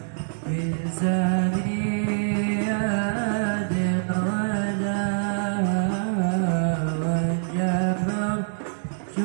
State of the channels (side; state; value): left; silent; digital silence